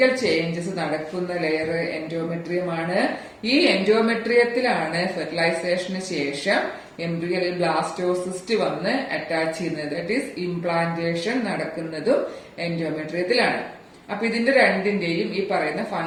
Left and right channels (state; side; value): identical; both; correlation 1.00